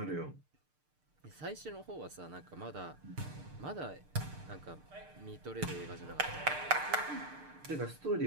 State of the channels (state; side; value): late; left; 6.6 ms